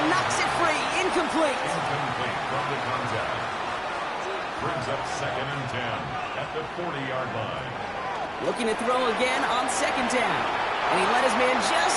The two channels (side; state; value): both; identical; correlation 1.00